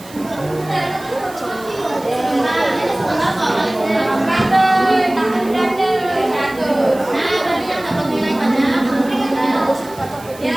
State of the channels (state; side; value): noise; right; hiss, 20 dB below the sound